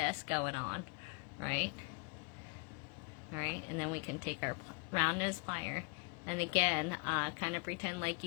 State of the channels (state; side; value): quieter; right; 33.5 dB